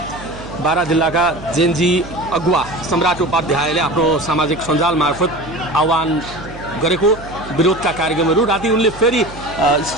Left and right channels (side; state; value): right; noise; hum, 16 dB below the sound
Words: बारा जिल्लाका जेनजी अगुवा सम्राट उपाध्यायले आफ्नो सामाजिक सञ्जाल मार्फत आह्वान गरेको विरोधका कार्यक्रमहरू राति उनले फेरि